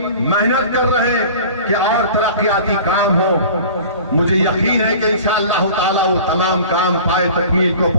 محنت کر رہے ہیں کہ اور ترقیاتی کام ہو۔ مجھے یقین ہے کہ انشاءاللہ تعالی وہ تمام کام پائے تکمیل کو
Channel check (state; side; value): inverted; both; correlation -0.42